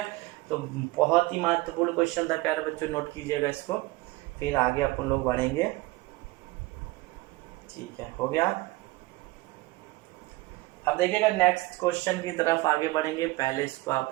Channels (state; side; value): quieter; left; 20.8 dB